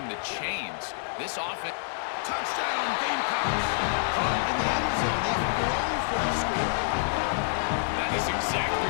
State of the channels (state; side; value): silent; right; digital silence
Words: the chains. This offense... Touchdown, Gamecocks! Caught in the end zone. They throw for a score. That is exactly